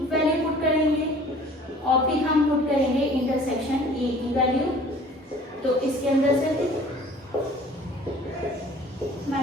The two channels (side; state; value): both; normal; correlation 0.50